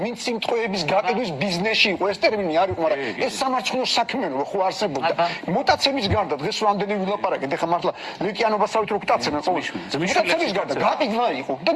ვინც სიმტყეების გაყიდვის ბიზნესში იყო ეს ტერმინი არ იყო მაგრამ ეს სამარცხნო საქმიანობა ხო არსებობდა მუტაციების გარდა დღეს რამდენი ვილაპარაკეთ ეხლა მართლა ლეკიანობასავით რო გტაცებენ ყოველთვის მუტაციების გარდა გაყიდვა იყო და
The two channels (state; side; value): identical; both; correlation 1.00